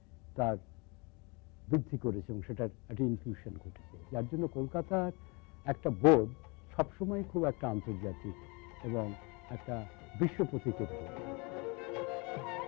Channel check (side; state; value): right; quieter; 29.2 dB